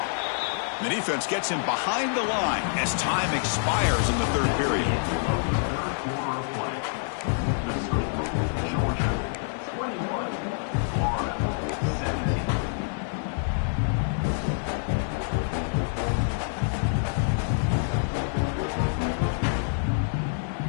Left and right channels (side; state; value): right; silent; digital silence